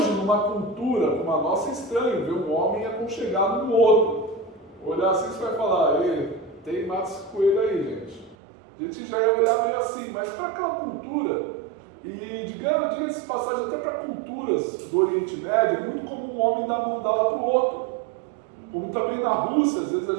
numa cultura como a nossa, é estranho ver um homem aconchegado no outro. Olhar assim, você vai falar, tem matos coelho aí, gente. A gente já ia olhar meio assim, mas para aquela cultura, e diga-se de passagem, até para culturas do Oriente Médio, é muito comum um homem dar a mão dela para o outro. Como também na Rússia, às vezes a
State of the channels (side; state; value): left; drops out; at 8.3 s